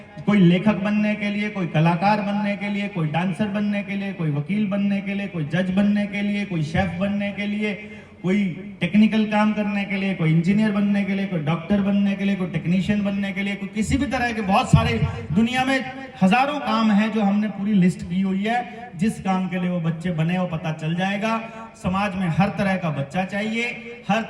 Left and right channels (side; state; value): both; identical; correlation 1.00